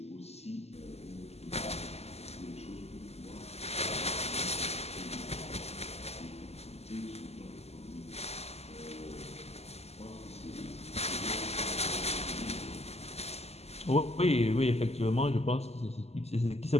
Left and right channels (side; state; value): right; late; 0.30 ms